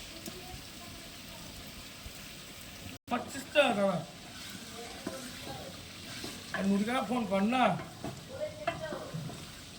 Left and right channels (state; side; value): identical; both; correlation 1.00